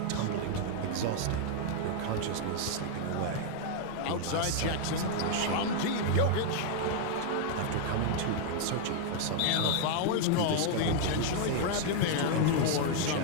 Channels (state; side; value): different; both; correlation 0.00